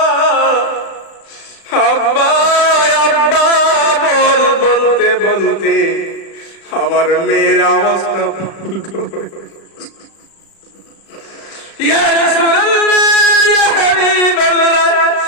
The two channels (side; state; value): right; late; 36 ms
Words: আব্বা আব্বা, বলতে বলতে আমার মেয়ের অবস্থা ইয়া রাসূলুল্লাহ, ইয়া হাবিবাল্লাহ,